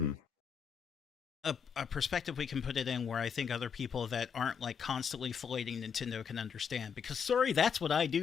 a perspective we can put it in where I think other people that aren't, like, constantly filleting Nintendo can understand. Because, sorry, that's what I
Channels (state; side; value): quieter; right; 6.8 dB